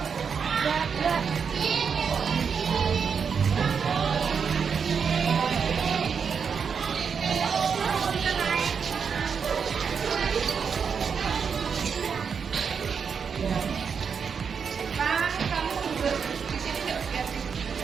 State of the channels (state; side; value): quieter; left; 6.3 dB